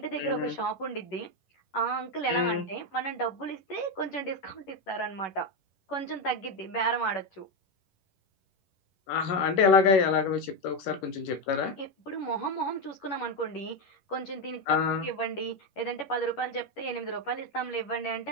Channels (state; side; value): late; right; 11 ms